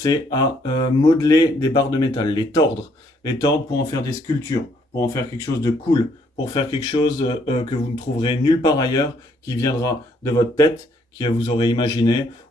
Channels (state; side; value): normal; both; correlation 0.68